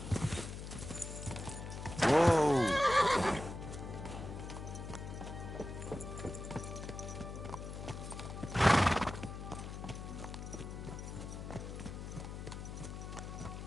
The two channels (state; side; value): noise; left; hum, 8 dB below the sound